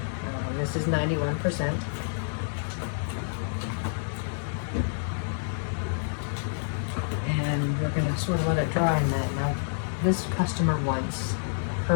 This is 91%. And we're going to sort of let it dry in that. Now, this customer wants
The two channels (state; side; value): silent; right; digital silence